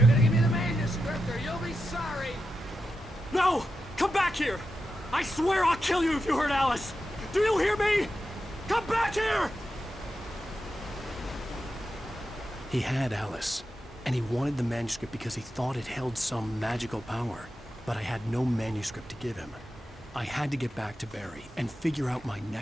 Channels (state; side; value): normal; both; correlation 0.89